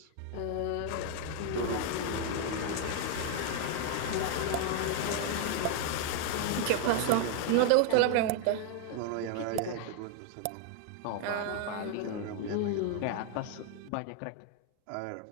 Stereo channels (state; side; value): different; both; correlation 0.00